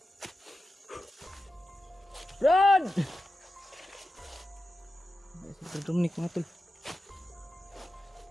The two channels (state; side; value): normal; both; correlation 0.92